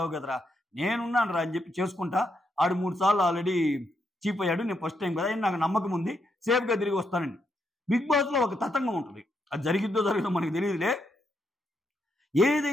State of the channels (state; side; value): normal; both; correlation 0.79